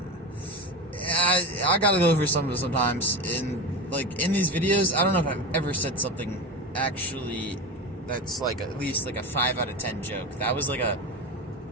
I gotta go over some of it sometimes. In these videos, I don't know if I've ever said something actually that's like at least like a 5 out of 10 joke. That was like a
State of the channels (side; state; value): both; normal; correlation 0.24